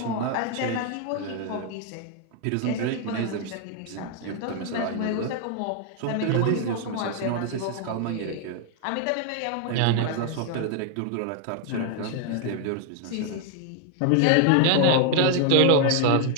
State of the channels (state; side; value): different; both; correlation 0.00